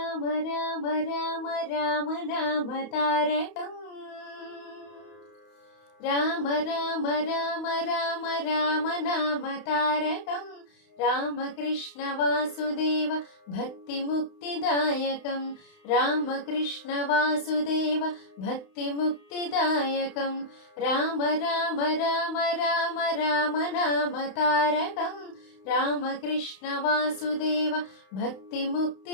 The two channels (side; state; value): right; late; 31 ms